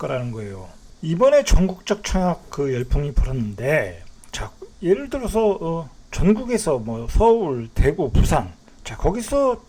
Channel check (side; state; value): both; identical; correlation 1.00